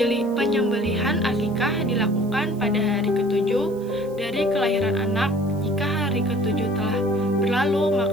Penyembelihan akikah dilakukan pada hari ke-7 dari kelahiran anak. Jika hari ke-7 telah berlalu,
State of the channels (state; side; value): noise; right; hiss, 26 dB below the sound